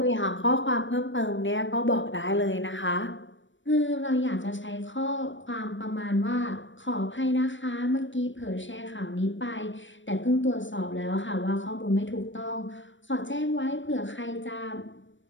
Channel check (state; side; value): late; right; 0.55 ms